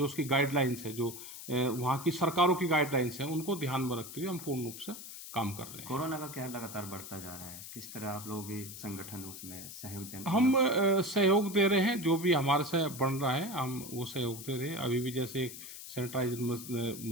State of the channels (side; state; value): left; noise; hiss, 12 dB below the sound